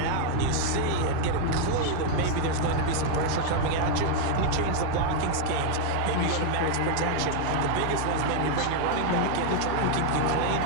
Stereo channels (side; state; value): both; different; correlation 0.00